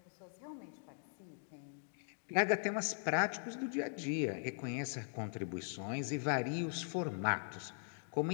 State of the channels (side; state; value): right; silent; digital silence